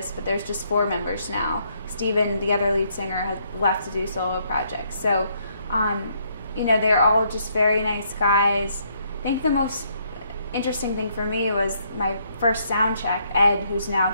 but there's just 4 members now. Steven, the other lead singer, has left to do solo projects. So, you know, they're all just very nice guys. I think the most interesting thing for me was my first sound check. Ed, who's now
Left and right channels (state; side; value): inverted; both; correlation -0.71